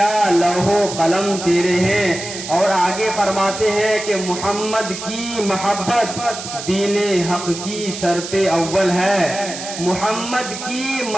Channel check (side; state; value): right; noise; hiss, 9 dB below the sound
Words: لوح و قلم تیرے ہیں۔ اور آگے فرماتے ہیں کہ محمد کی محبت دین حق کی شرط اول ہے، محمد کی